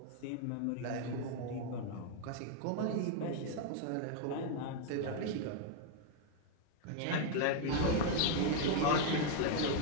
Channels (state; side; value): different; both; correlation 0.00